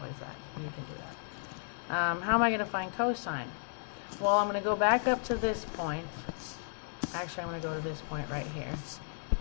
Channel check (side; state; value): right; silent; 55 dB below the other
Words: that. You can do that. How am I going to find cosine? Well, I'm going to go back up to this point. Actually, I'm going to go to this point right here.